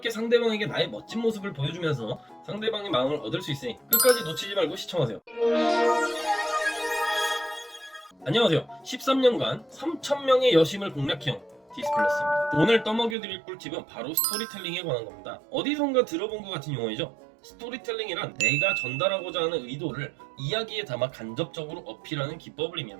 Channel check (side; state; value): left; drops out; at 13.2 s